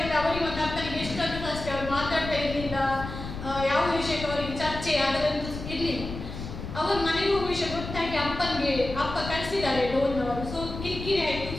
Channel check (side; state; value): left; noise; rumble, 9 dB below the sound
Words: ಅವರಿಗೆ ಮತ್ತೆ ಅಪ್ಪನಿಗೆ ಎಷ್ಟಂತ ಅಷ್ಟೇ ಅವ್ರು ಮಾತಾಡ್ತಾ ಇರಲಿಲ್ಲ, ಯಾವ ವಿಷಯಕ್ಕೆ ಅವರಿಗೆ ಚರ್ಚೆ ಅದರಂತೂ ಇರಲಿಲ್ಲ. ಅವರು ಮನೆಗೆ ಹೋಗುವ ವಿಷಯ ಗೊತ್ತಾಗಿ ಅಪ್ಪ ಕಳಿಸಿದ್ದಾರೆ ಲೋನ್ನವರು. ಸೊ ಕಿರಿಕಿರಿ ಆಯಿತು.